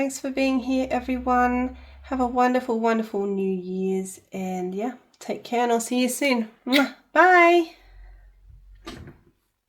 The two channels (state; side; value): identical; both; correlation 1.00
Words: for being here, everyone. Have a wonderful, wonderful New Year's, and yeah, take care, and I'll see you soon. Bye.